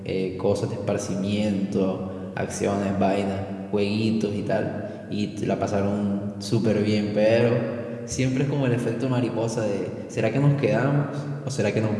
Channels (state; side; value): identical; both; correlation 1.00